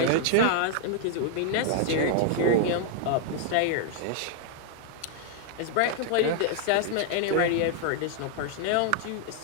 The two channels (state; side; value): different; both; correlation -0.01